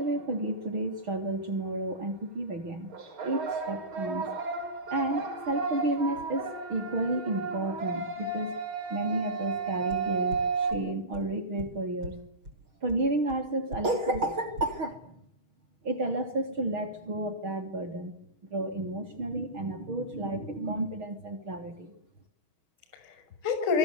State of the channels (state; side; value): late; left; 6.3 ms